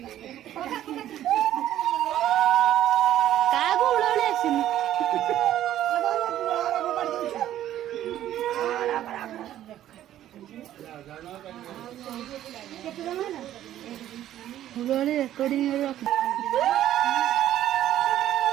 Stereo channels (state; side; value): quieter; left; 12.4 dB